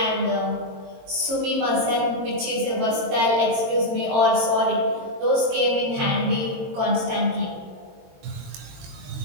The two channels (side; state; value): left; late; 22 ms